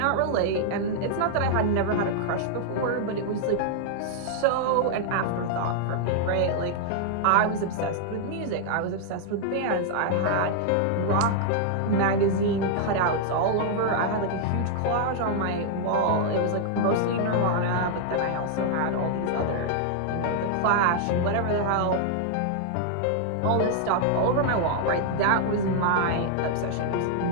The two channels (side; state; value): both; different; correlation -0.01